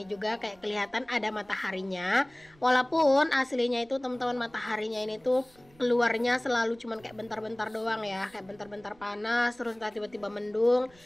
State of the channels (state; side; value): noise; right; rumble, 28 dB below the sound